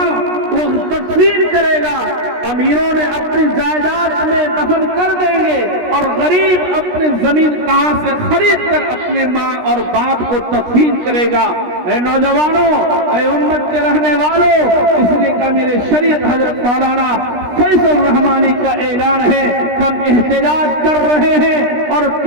وہ تدفین کرے گا؟ امیروں نے اپنی جائیداد میں دفن کر دیں گے، اور غریب اپنی زمین کہاں سے خرید کر اپنے ماں اور باپ کو تدفین کرے گا؟ اے نوجوانوں، اے امت کے رہنے والوں، اس لیے کہ میرے شریعت حضرت مولانا فیض الرحمانی کا اعلان ہے، ہم احتجاج کر رہے ہیں اور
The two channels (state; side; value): late; left; 16 ms